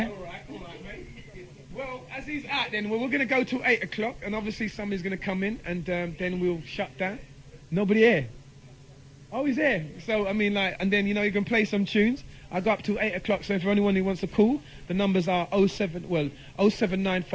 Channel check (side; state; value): both; identical; correlation 1.00